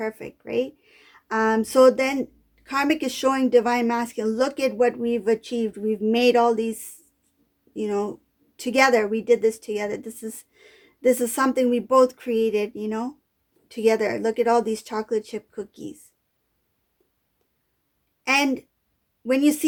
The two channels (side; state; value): both; identical; correlation 1.00